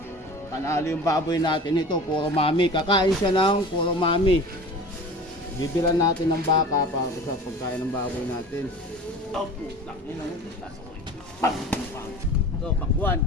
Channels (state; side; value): normal; both; correlation 0.38